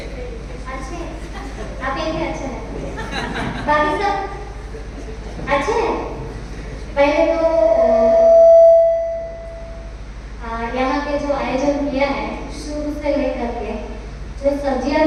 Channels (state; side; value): identical; both; correlation 1.00